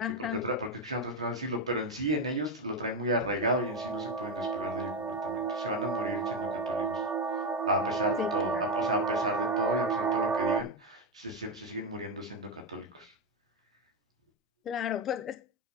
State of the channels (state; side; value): normal; both; correlation 0.09